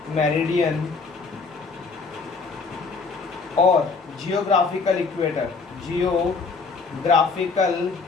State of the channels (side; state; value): right; quieter; 4.5 dB